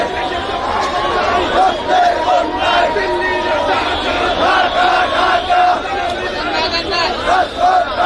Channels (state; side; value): identical; both; correlation 1.00